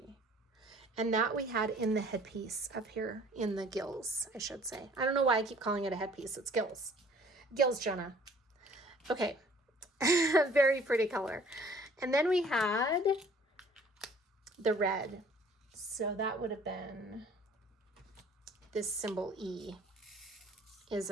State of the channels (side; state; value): both; normal; correlation 0.54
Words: And that we had in the headpiece up here in the gills, I should say. I don't know why I keep calling it a headpiece. It's gills. Gills, Jenna. Okay. Very pretty color. And then we had the red. So that would have been this symbol E. Is